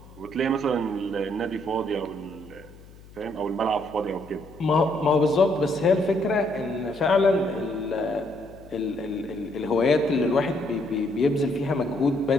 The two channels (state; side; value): noise; left; hum, 21 dB below the sound